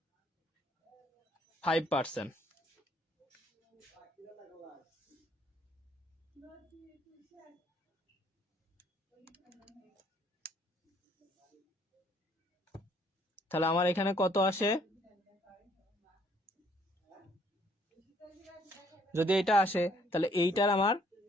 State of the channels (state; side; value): normal; both; correlation 0.64